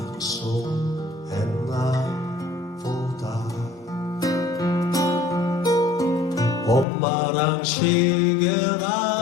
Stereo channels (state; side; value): drops out; right; at 6.9 s